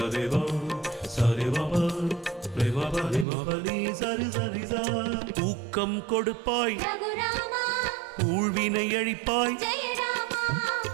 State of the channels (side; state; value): left; drops out; at 3.2 s